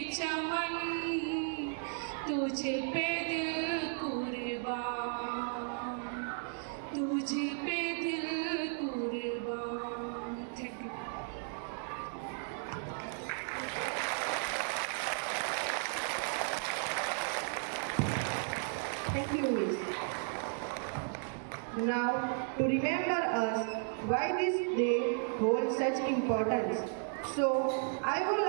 चमन, तुझ पे दिल कुर्बान, तुझ पे दिल कुर्बान। Thank you. Thank you, Miss. Now, to remember us why this day holds such importance, so I would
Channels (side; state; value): left; silent; 54 dB below the other